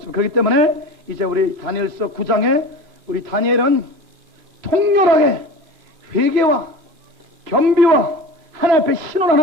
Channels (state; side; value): late; left; 3.0 ms